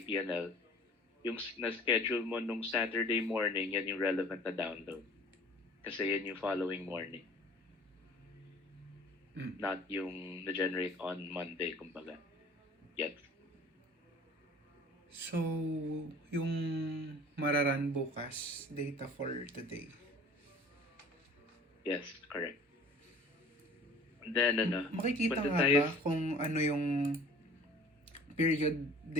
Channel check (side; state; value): both; normal; correlation 0.48